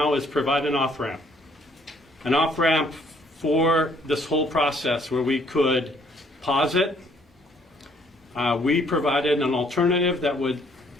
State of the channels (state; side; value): normal; both; correlation 0.64